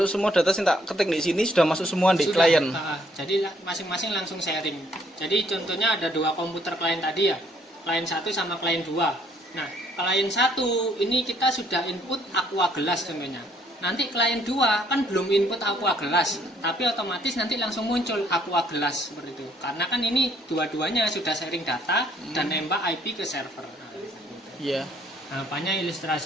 Semua data yang tak ketik di sini sudah masuk semua di sudah, klien. Jadi masing-masing langsung sharing. Jadi contohnya ada 2 komputer klien tadi ya, klien 1 sama klien 2. Nah, klien 1 ini kita sudah input Aqua Gelas contohnya. Nanti klien 2 kan belum input Aqua Gelas, tapi otomatis nanti langsung muncul Aqua Gelas seperti itu. Karena kan ini dua-duanya sudah sharing data dan nembak IP ke server. Iya. Nah, apanya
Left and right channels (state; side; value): normal; both; correlation 0.65